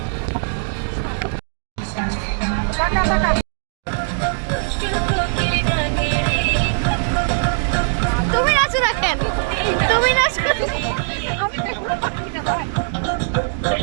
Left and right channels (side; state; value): left; silent; digital silence